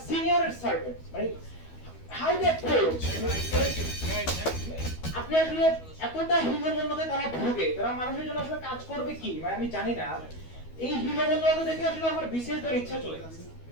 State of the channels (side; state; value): right; late; 12 ms